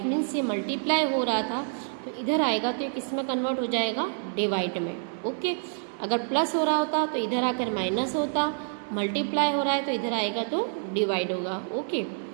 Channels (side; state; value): left; silent; 56 dB below the other